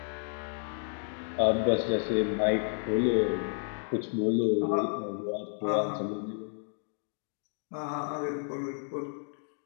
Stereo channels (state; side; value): silent; right; 56 dB below the other